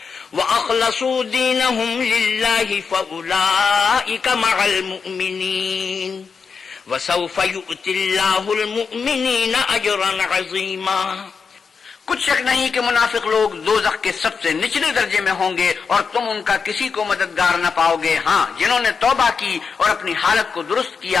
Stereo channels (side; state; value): right; quieter; 5.5 dB